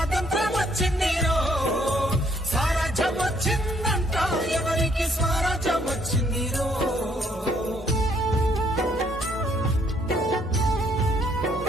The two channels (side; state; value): both; normal; correlation 0.67